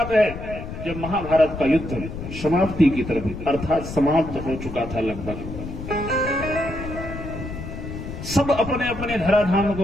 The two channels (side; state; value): left; noise; rumble, 9 dB below the sound